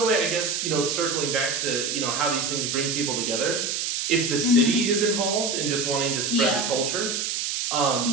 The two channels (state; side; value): noise; right; hiss, 1 dB below the sound